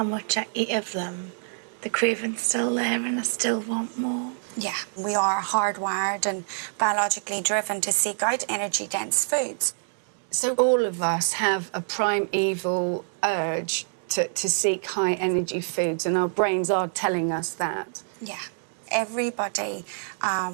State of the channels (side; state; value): left; silent; digital silence